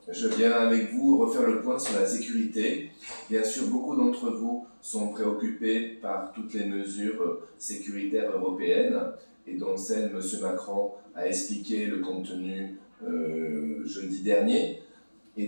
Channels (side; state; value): both; inverted; correlation -1.00